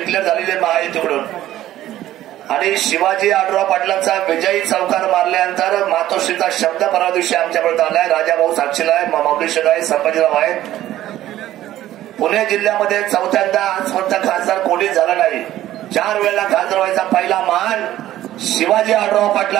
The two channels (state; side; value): quieter; left; 13.7 dB